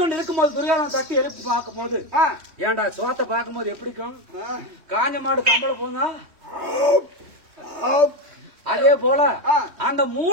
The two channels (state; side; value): late; left; 3.1 ms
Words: இருக்கும்போது துரியோதனன் தட்டி எழுப்பி பார்க்கும் போது, ஏன்டா சோத்தை பார்க்கும் போது எப்படிக்கும்? காஞ்ச மாடு கம்பளை போங்க. அதே போல அந்த